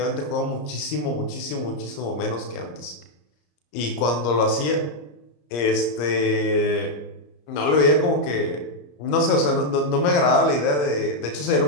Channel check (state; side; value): late; right; 34 ms